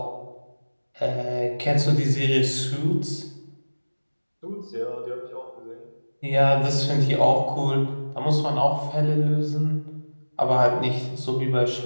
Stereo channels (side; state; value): both; inverted; correlation -1.00